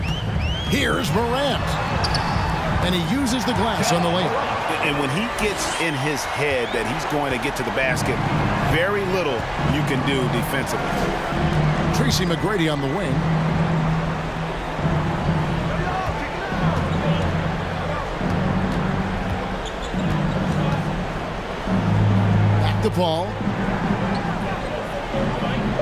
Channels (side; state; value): both; identical; correlation 1.00